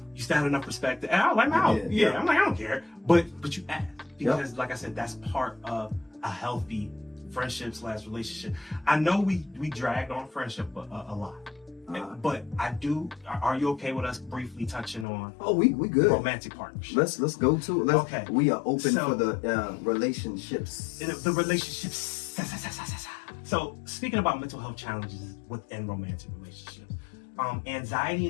You still have enough respect. And I was like, no. Yeah. I'm like, I don't care. But you asked. Because like I said, that's part of a healthy friendship / relationship. I know we dragged on friendship a lot. But I do. Are you okay with us briefly touching on? Oh, we good. Romantic partnership. Let's go to it. Okay. We are open for the relationships. The relationships. So speaking about mental health challenges within romantic relationships, anxiety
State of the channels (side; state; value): right; drops out; at 15.1 s